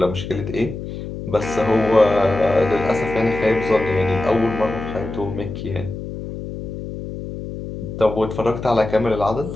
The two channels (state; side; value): noise; left; hum, 8 dB below the sound